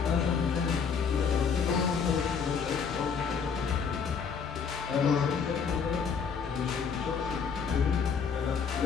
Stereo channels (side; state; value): right; quieter; 6.2 dB